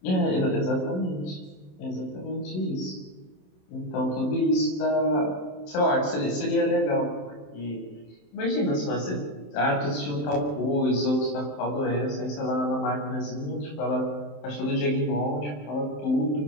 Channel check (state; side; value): late; right; 27 ms